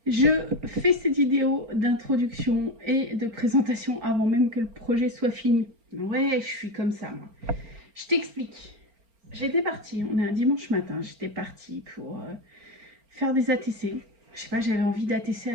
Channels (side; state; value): left; late; 4.4 ms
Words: je fais cette vidéo d'introduction et de présentation avant même que le projet soit fini. Ouais, je suis comme ça, moi. Je t'explique. J'étais partie, on est un dimanche matin, j'étais partie pour faire des ATC. Je sais pas, j'avais envie d'ATC